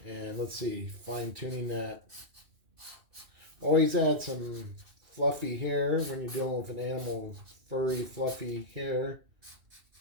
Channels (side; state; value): left; late; 2.6 ms